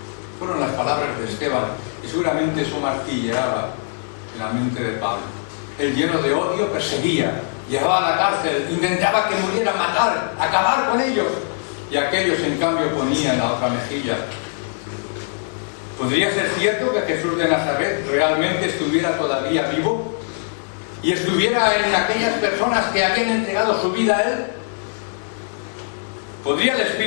Fueron las palabras de Esteban, y seguramente eso martilleaba en la mente de Pablo. Él, lleno de odio, perseguía, llevaba a la cárcel, intentaba que murieran, matar, acabar con ellos, y aquellos en cambio ponían la otra mejilla. ¿Podría ser cierto que Jesús de Nazaret realmente estuviera todavía vivo y estuviera en aquellas personas que habían entregado su vida a Él? ¿Podría el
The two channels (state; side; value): silent; right; digital silence